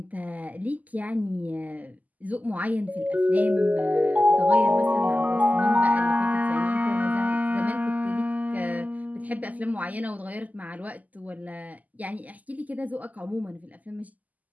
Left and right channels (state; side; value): late; left; 0.078 ms